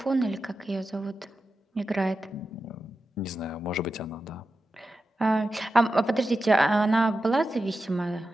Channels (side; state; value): both; normal; correlation 0.91